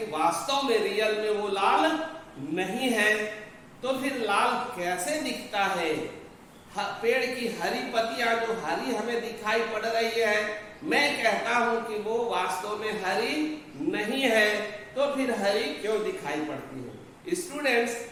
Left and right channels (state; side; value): identical; both; correlation 1.00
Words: वास्तव में रियल में वो लाल नहीं है। तो फिर लाल कैसे दिखता है? पेड़ की हरी पत्तियां जो हरी हमें दिखाई पड़ रही है, मैं कहता हूं कि वो वास्तव में हरी नहीं है। तो फिर हरी क्यों दिखाई पड़ती है? स्टूडेंट्स,